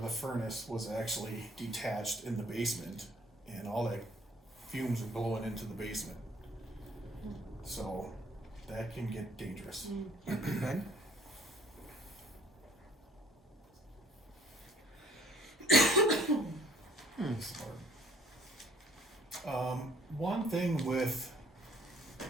furnace was actually detached in the basement, and all that fumes are blowing into the basement. So that can get dangerous. Good. One thing with,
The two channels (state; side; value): normal; both; correlation 0.59